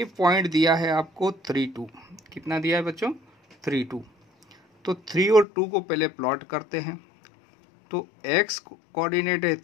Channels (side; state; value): right; drops out; at 5.5 s